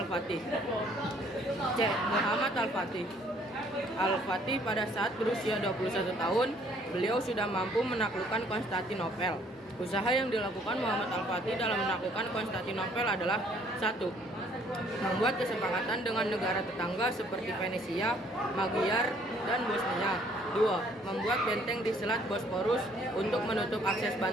C. Muhammad Al-Fatih. Al-Fatih pada saat berusia 21 tahun, beliau sudah mampu menaklukkan Konstantinopel. Usaha yang dilakukan Muhammad Al-Fatih dalam menaklukkan Konstantinopel adalah 1. Membuat kesepakatan dengan negara tetangga seperti Venesia, Magyar, dan Bosnia. 2. Membuat benteng di Selat Bosporus untuk menutup akses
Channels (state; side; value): normal; both; correlation 0.62